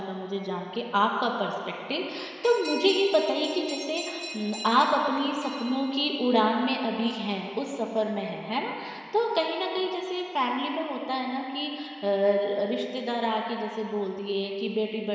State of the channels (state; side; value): identical; both; correlation 1.00